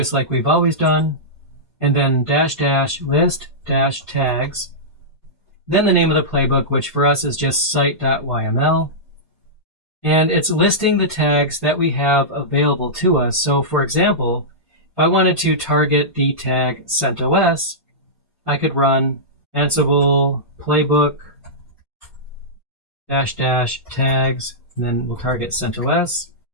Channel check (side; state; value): both; normal; correlation -0.14